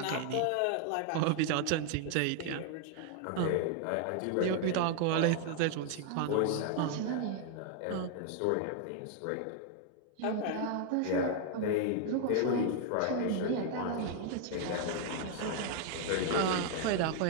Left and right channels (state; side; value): different; both; correlation 0.00